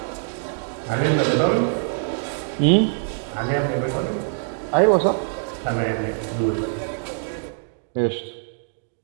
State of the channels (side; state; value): left; silent; 63 dB below the other